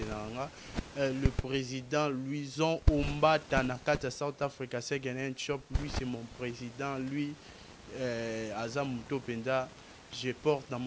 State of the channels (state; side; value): identical; both; correlation 1.00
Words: le président Louison Ombata Nakata South Africa Second Shop. Lui c'est mon président, lui Azam Topenda, je porte dans